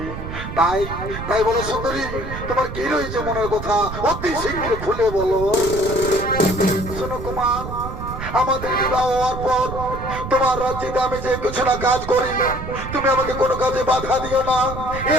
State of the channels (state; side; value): noise; right; rumble, 8 dB below the sound